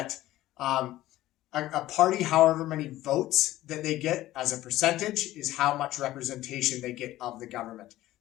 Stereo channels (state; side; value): quieter; right; 15.5 dB